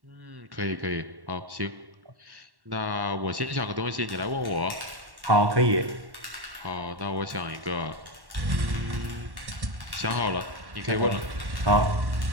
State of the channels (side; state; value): left; late; 1.1 ms